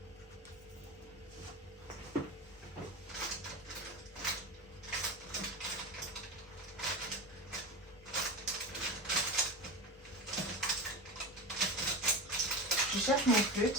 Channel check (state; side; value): normal; both; correlation 0.24